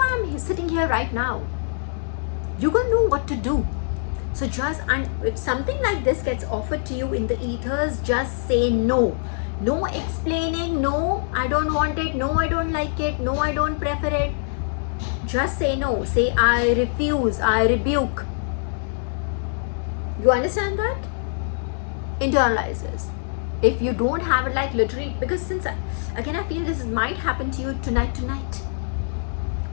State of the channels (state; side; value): silent; right; digital silence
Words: I'm sitting here right now. You're gonna know what to do. So if something like this gets offered to you in the ethers, just say no. No explaining, no, I don't want it, no, I don't like it, no, I don't prefer it. Just say no. Say, I refuse, I rebuke. You understand that? Internalize this. If you don't have it, like literally, because since again I feel this might happen to you tonight,